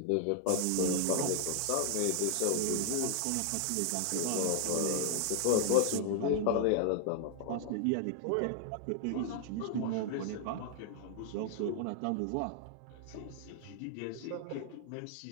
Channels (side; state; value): both; different; correlation 0.00